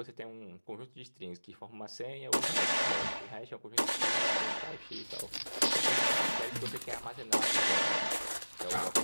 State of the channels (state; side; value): inverted; both; correlation -1.00